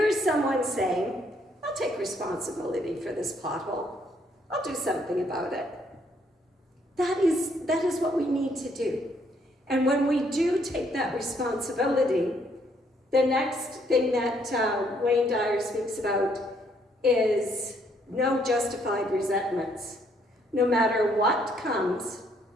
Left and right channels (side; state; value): both; normal; correlation 0.69